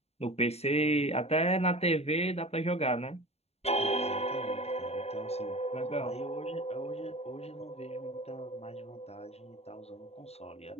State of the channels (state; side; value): late; right; 0.30 ms